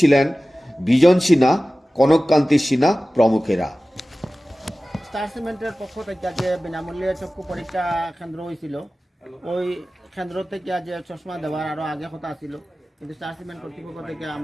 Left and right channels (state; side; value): normal; both; correlation 0.97